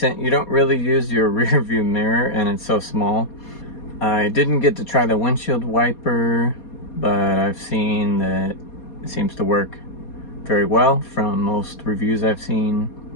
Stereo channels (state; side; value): late; right; 4.2 ms